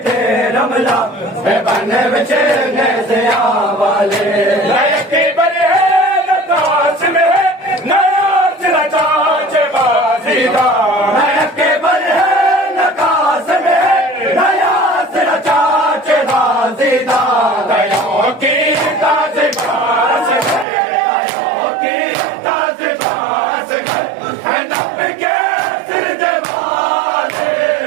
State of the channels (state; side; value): drops out; left; at 20.7 s